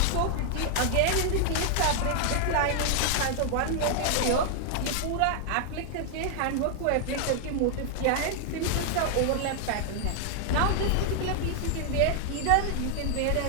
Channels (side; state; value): both; different; correlation 0.00